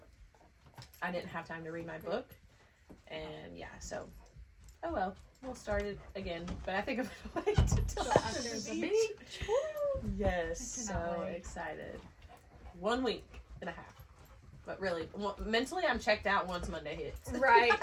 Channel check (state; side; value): identical; both; correlation 1.00